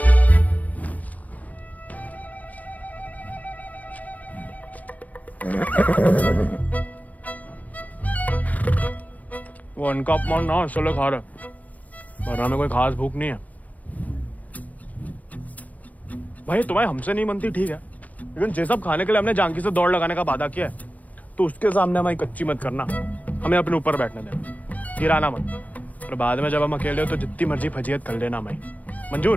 वो उनका अपमान ना इसलिए खा रहे, वरना में कोई खास भूख नहीं है। भाई तुम्हें हमसे नहीं बनती ठीक है, लेकिन ये सब खाने के लिए हमने जानकी से दौड़ लगाने का वादा किया है, तो उसके सामने हमारी कच्ची मत करना, हमें अपने ऊपर बैठने देना, गिराना मत। और बाद में जब हम अकेले हो तो जितनी मर्जी फजीयत कर लेना हमारी,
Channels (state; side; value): late; right; 0.076 ms